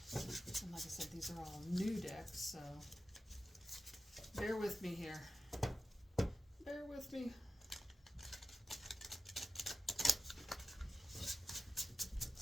And like I said, these are all new decks, so bear with me here. Bear with me.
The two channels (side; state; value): both; normal; correlation 0.92